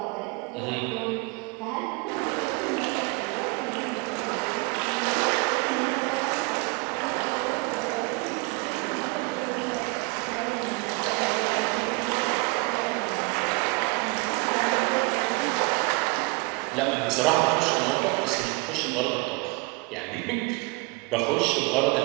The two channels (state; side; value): quieter; left; 28.0 dB